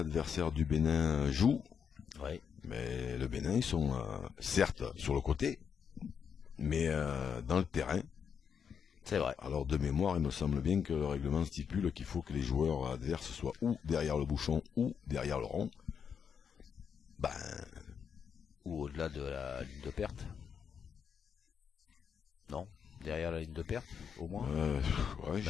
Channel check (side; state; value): right; quieter; 7.1 dB